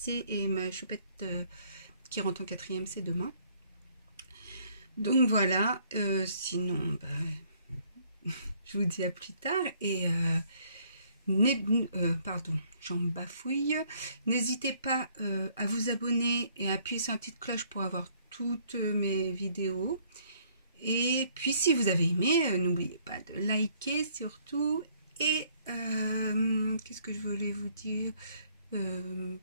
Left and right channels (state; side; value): inverted; both; correlation -0.63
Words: et ma choupette qui rentre en 4e, c'est demain. Donc voilà, sinon, bah, je vous dis à plus tard et... pardon, j'en bafouille. N'hésitez pas à vous abonner et à appuyer sur la petite cloche pour avoir toutes mes vidéos. Et puis si vous avez aimé, n'oubliez pas de liker surtout. Et qu'est-ce que je voulais vous dire,